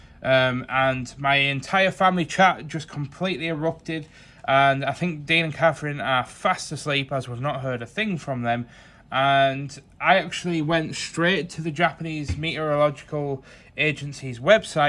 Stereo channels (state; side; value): identical; both; correlation 1.00